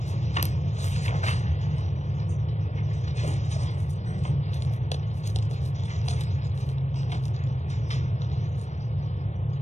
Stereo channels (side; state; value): right; late; 0.34 ms